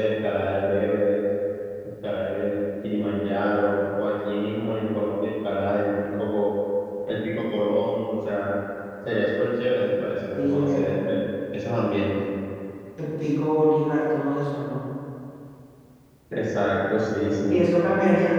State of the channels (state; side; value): identical; both; correlation 1.00